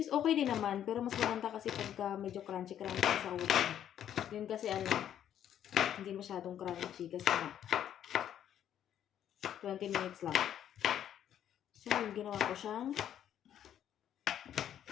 is okay din naman, pero mas maganda kasi pagka medyo crunchy sa oven. Yun kasi hindi masyadong crunchy kasi 20 minutes lang. So, ginawa ko siyang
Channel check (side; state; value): right; quieter; 10.3 dB